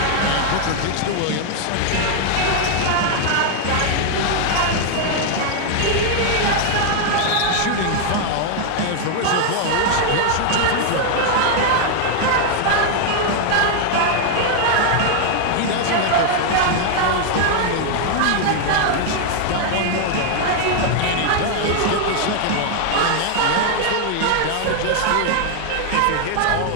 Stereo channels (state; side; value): different; both; correlation 0.00